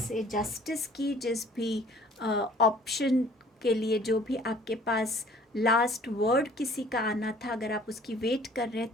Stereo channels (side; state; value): both; normal; correlation 0.54